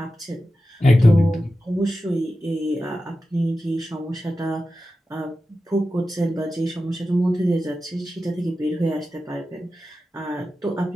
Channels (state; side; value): normal; both; correlation 0.92